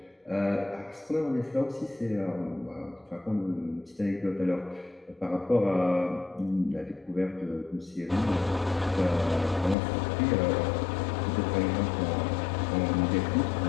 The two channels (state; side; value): drops out; right; at 9.8 s